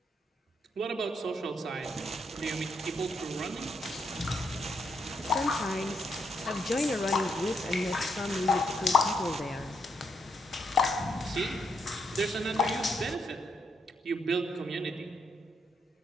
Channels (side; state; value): both; normal; correlation 0.76